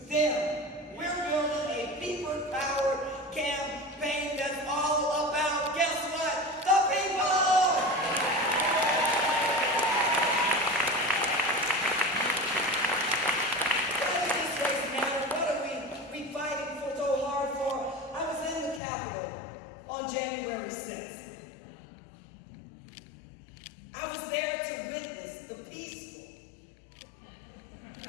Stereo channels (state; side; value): drops out; right; at 18.8 s